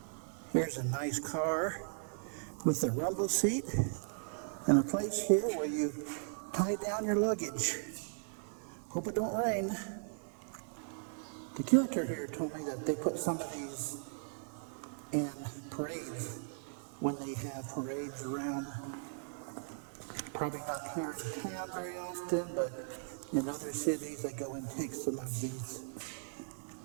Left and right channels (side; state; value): left; silent; 53 dB below the other